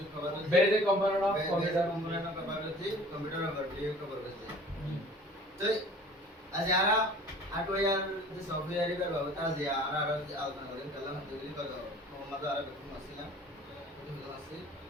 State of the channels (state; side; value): normal; both; correlation 0.47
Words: basic component of computer. Cover করেছি কম্পিউটার ওভারভিউ কভার করেছি তো আজ যারা হার্ডওয়্যার যে সফটওয়্যার এর ব্যবহার তারা যে আর আলোচনা করেন কালাম যেগুলি কত মোহাম্মদ আর বেতন আসছিলাম বেতন আসছি